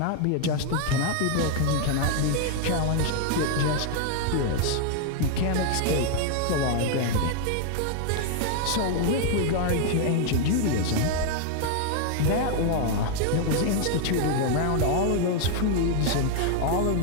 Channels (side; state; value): both; different; correlation 0.00